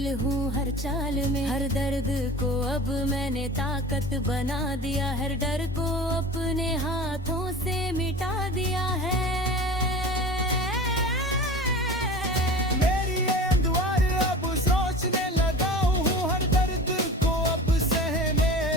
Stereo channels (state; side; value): normal; both; correlation 0.36